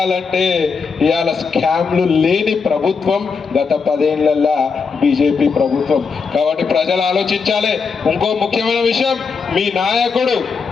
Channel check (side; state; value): right; quieter; 5.3 dB